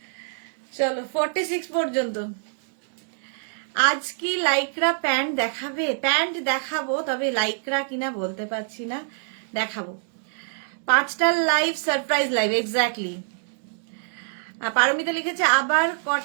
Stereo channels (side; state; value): left; silent; digital silence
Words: চলো 46 পর্যন্ত। আজ কি লাইক্রা প্যান্ট দেখাবে? প্যান্ট দেখাবো, তবে লাইক্রা কিনা বলতে পারছি না। দেখাবো। 5টার live, surprise live, exactly. Paramita লিখেছে আবার